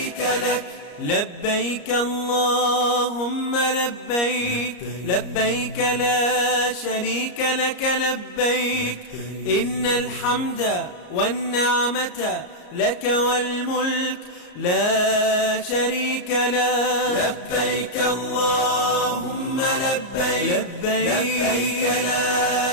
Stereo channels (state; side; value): late; right; 34 ms